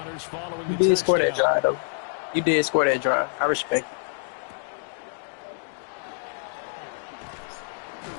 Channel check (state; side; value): silent; right; digital silence